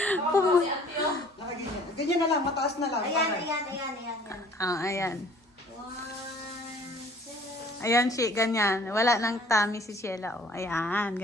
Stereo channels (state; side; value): normal; both; correlation 0.54